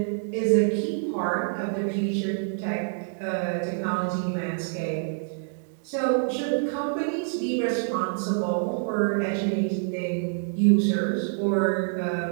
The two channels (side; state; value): left; silent; digital silence